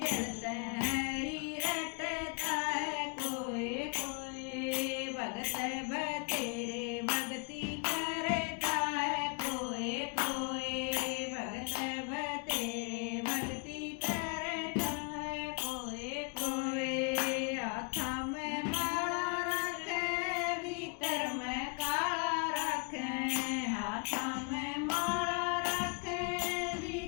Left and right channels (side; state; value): right; quieter; 35.5 dB